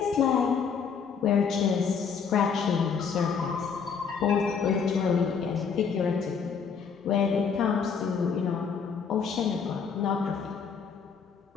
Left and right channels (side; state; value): right; quieter; 6.3 dB